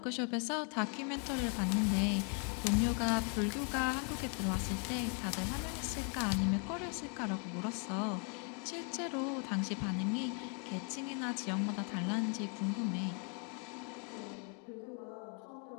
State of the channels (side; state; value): right; quieter; 38.2 dB